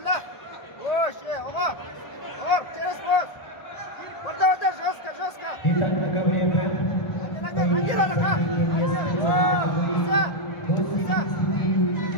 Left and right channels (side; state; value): right; late; 1.7 ms